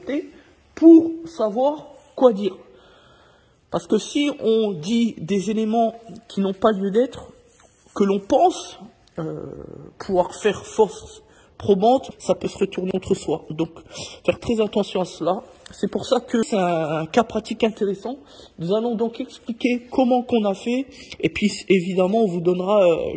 pour savoir quoi dire. Parce que si on dit des éléments qui n'ont pas lieu d'être, que l'on pense pouvoir faire force probante, ça peut se retourner contre soi. Donc, faire très attention à cela. C'est pour ça que c'est un cas pratique intéressant. Nous allons donc expliquer comment qu'on a fait. Et puis, évidemment, on vous donnera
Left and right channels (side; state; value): both; identical; correlation 1.00